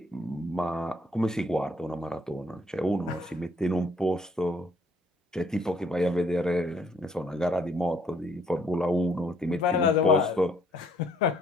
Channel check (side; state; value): both; normal; correlation 0.65